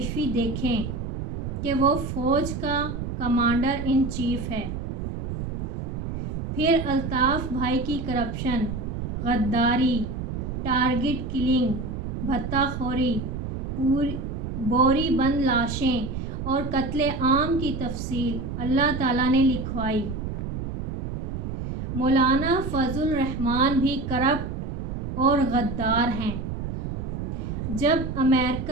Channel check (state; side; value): noise; right; rumble, 5 dB below the sound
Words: دیکھیں کہ وہ فوج کا کمانڈر ان چیف ہے۔ پھر الطاف بھائی کی کرپشن، غداری، ٹارگٹ کلنگ، بھتہ خوری، بوری بند لاشیں اور قتل عام کی تفصیل اللہ تعالیٰ نے لکھوائی۔ مولانا فضل الرحمان بھی کرپٹ اور غدار ہیں۔ جب